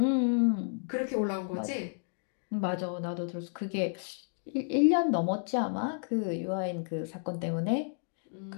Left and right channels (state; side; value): silent; right; digital silence